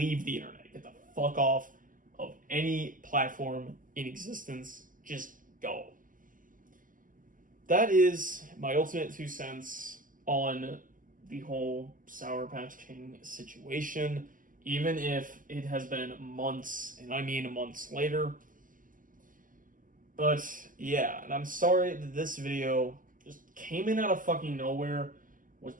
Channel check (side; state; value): left; late; 0.39 ms